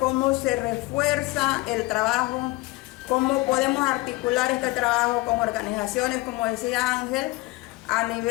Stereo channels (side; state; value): right; quieter; 21.5 dB